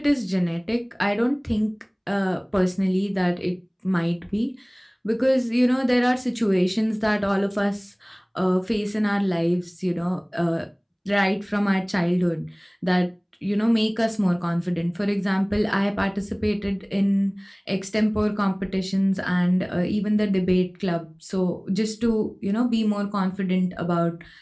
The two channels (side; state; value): both; identical; correlation 1.00